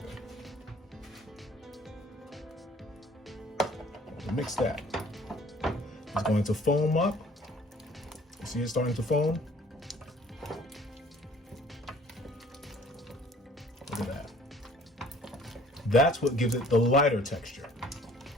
Mix that. It's going to foam up. You see it starting to foam? Look at that. That's what gives it the lighter texture.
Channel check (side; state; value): both; normal; correlation 0.55